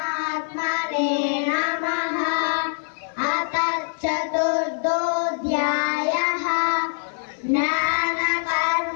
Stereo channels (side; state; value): right; silent; 55 dB below the other